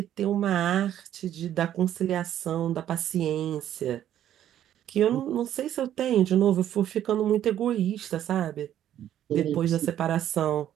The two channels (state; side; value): quieter; left; 11.2 dB